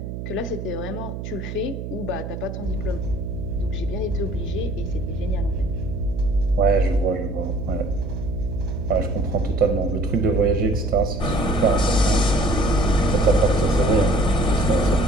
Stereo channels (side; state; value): right; noise; hum, 7 dB below the sound